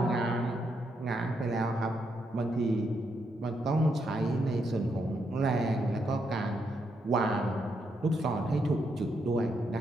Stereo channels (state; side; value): normal; both; correlation 0.79